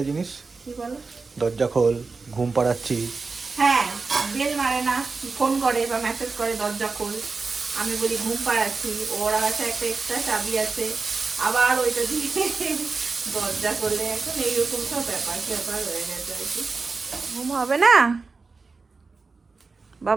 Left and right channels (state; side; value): quieter; left; 4.3 dB